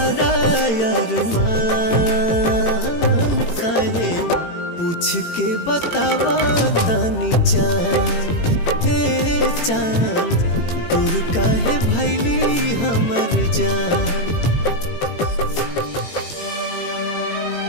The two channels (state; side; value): late; right; 18 ms